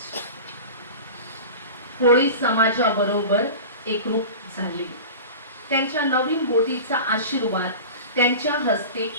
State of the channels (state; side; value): inverted; both; correlation -0.33